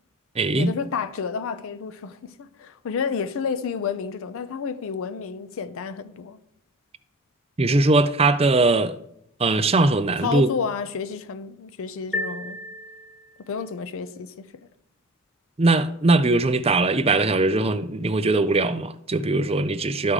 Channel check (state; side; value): normal; both; correlation 0.41